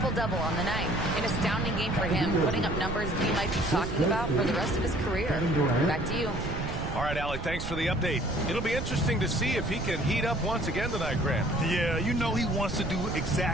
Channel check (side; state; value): right; noise; rumble, 6 dB below the sound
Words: on the night. An astounding game for him, putting up numbers we might be talking about for the rest of his career. Back to you. All right, Alec, thanks for the update. It'll be interesting to see if he can heat up once again tonight, Grant. Yeah, you know he wants to do